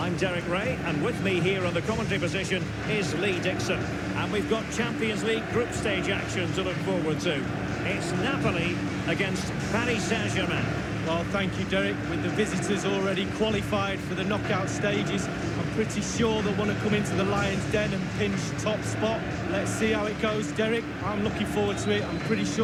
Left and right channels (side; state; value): both; identical; correlation 1.00